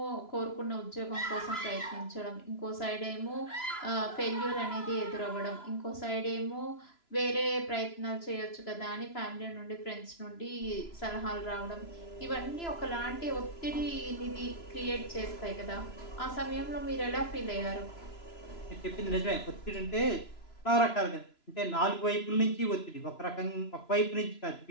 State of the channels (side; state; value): right; late; 3.0 ms